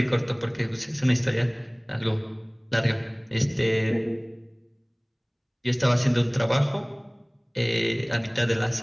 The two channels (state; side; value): identical; both; correlation 1.00